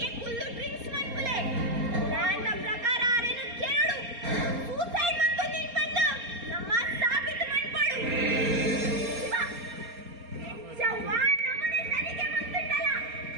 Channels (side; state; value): left; late; 4.3 ms